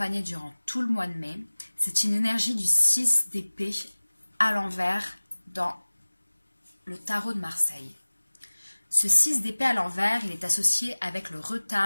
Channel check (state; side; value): inverted; both; correlation -1.00